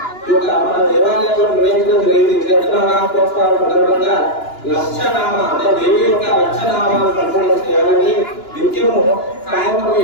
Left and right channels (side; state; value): right; late; 2.9 ms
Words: మన దేవాలయంలో నిర్వహించడం జరిగింది. చైత్రనవరాత్రోత్సవాల సందర్భంగా లక్షనామ అంటే దేవి యొక్క లక్షనామాలు సంపూర్ణ చేయాలని నిత్యము సాయంత్రం